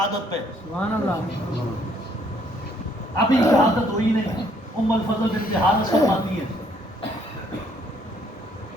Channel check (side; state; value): both; normal; correlation 0.66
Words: پہ، ابھی شہادت ہوئی نہیں۔ ام الفضل بنت حارث فرماتی ہے